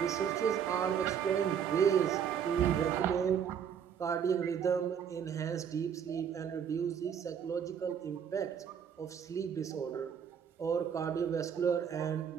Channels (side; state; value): left; quieter; 7.9 dB